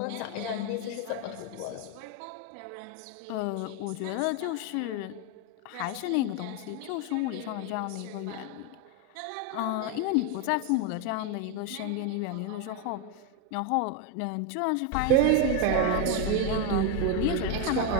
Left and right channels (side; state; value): both; different; correlation 0.02